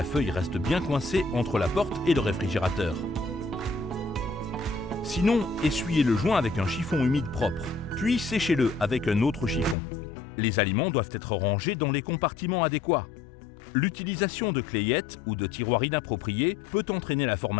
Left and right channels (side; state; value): right; drops out; at 9.8 s